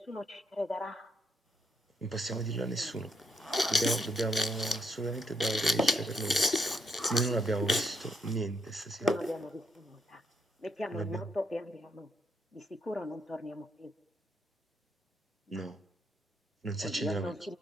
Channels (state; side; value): normal; both; correlation 0.76